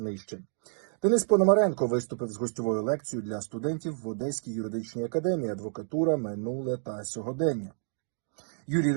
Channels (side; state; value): left; silent; digital silence